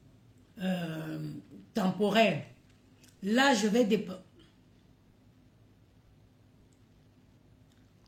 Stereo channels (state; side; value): identical; both; correlation 1.00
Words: temporaire. Là, je vais